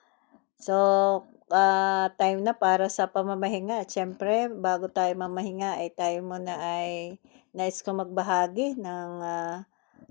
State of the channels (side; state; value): right; quieter; 31.8 dB